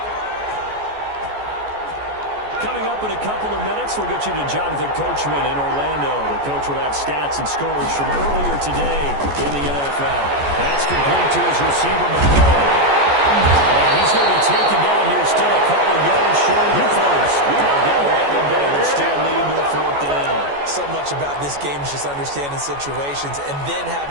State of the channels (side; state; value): left; late; 14 ms